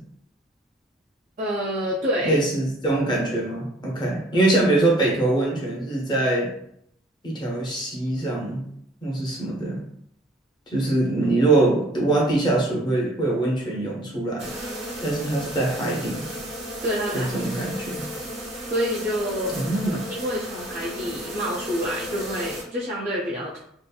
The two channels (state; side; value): normal; both; correlation 0.54